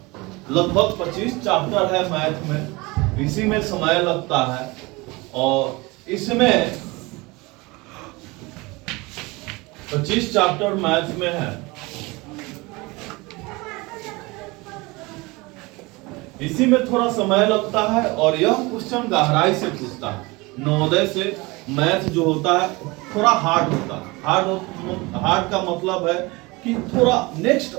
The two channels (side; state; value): left; quieter; 24.1 dB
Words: लगभग 25 चैप्टर है मैथ में, इसी में समय लगता है। और इसमें 25 चैप्टर मैथ में है, इसी में थोड़ा समय लगता है। और यह क्वेश्चन गहराई से पूछता है। नवोदय से मैथ जो होता है थोड़ा हार्ड होता है। हार्ड का मतलब है कि थोड़ा नेक्स्ट